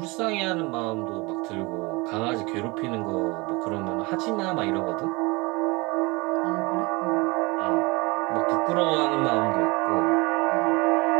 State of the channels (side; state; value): left; quieter; 25.4 dB